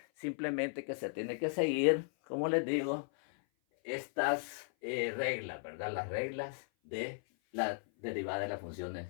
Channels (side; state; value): right; silent; 54 dB below the other